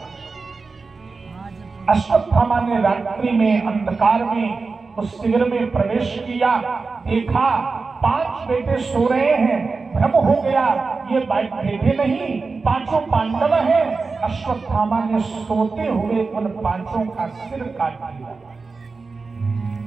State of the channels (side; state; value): left; quieter; 4.2 dB